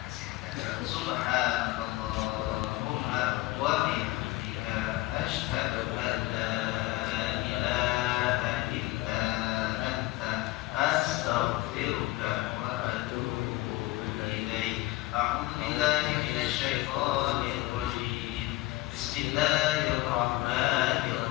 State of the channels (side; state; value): right; quieter; 19.1 dB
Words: kesehatan. Subhanallahumma wa bihamdika asyhadu an la ilaha illa anta astaghfiruka wa atubu ilaik. A'udzu billahi minasy syaithanir rajim.